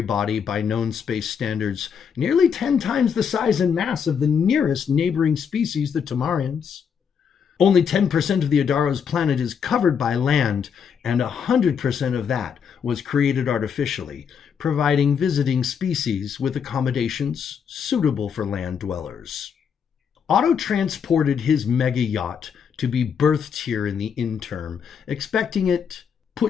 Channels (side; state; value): right; quieter; 7.1 dB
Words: body by known space standards, nearly 10 times the size and mass of the nearest neighboring species, the Tamarians. Only 10% of the Adaro's planet is covered by land, and 100% of that was created artificially, providing visiting species with accommodations suitable for land dwellers. Otto transported his mega yacht to be berthed here in the interim, expecting it